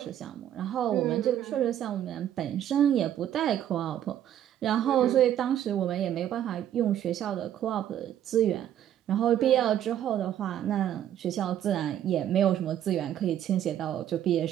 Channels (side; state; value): left; quieter; 10.9 dB